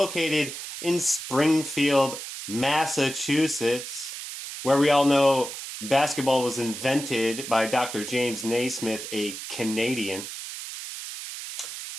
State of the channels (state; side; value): noise; right; hiss, 9 dB below the sound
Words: in Springfield, Massachusetts, where we all know basketball was invented by Dr. James Naismith, a Canadian.